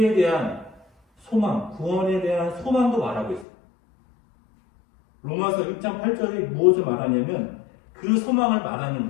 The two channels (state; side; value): drops out; right; at 3.5 s